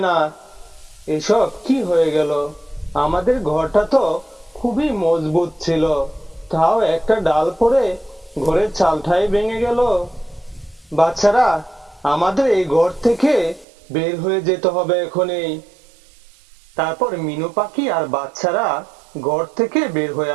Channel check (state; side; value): drops out; left; at 13.7 s